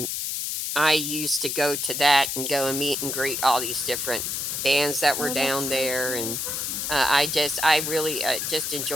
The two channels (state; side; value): noise; left; hiss, 2 dB below the sound